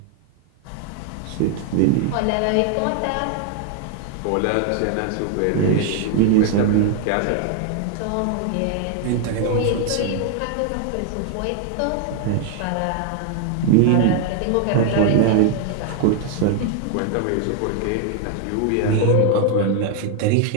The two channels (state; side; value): different; both; correlation 0.00